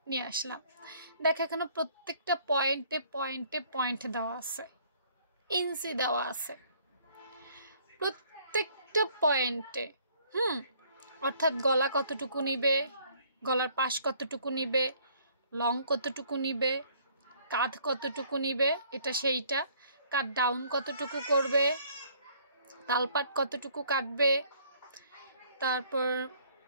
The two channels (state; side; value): inverted; both; correlation -0.60